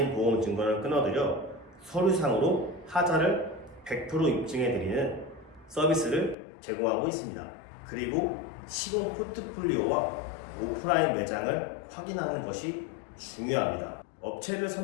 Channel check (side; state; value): right; drops out; at 6.4 s